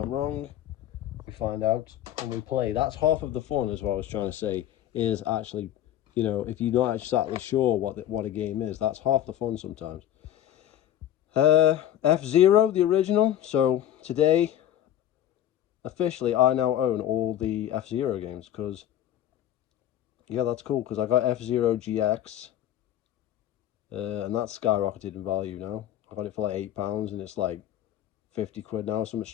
wrong. We find out when we play. That's half of the fun, is what I was trying to say, is actually, you know, if you're not exactly sure what a game is, that's half the fun sometimes. F-Zero, the original. So today, officially, I now own all the F-Zero games, because, yeah, that's cool, because I got F-Zero GX, and that's skyrocketed in value now. I got it for like £8, and it's like 50 quid now, something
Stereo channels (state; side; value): quieter; right; 11.4 dB